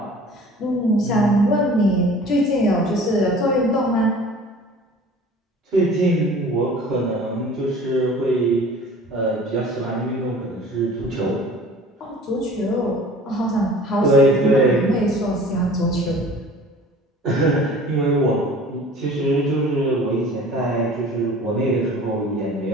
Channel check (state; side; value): normal; both; correlation 0.45